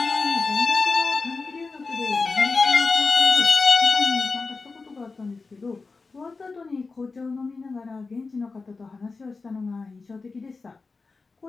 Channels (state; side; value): quieter; right; 4.1 dB